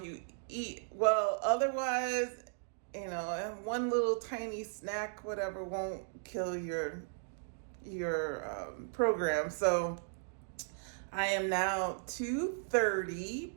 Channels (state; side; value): silent; left; digital silence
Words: you eat well, otherwise, one little tiny snack, whatever, won't kill your program. So I am now